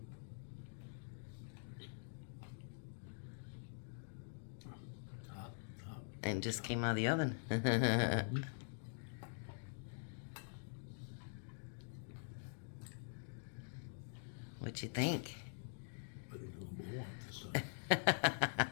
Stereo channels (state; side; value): silent; right; digital silence